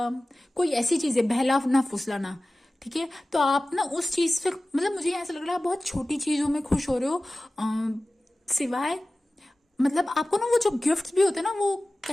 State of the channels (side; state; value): both; normal; correlation 0.97